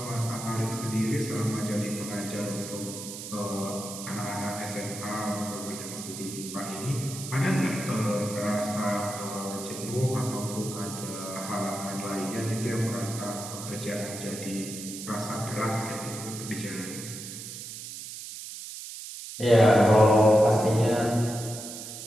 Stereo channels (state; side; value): noise; right; hiss, 10 dB below the sound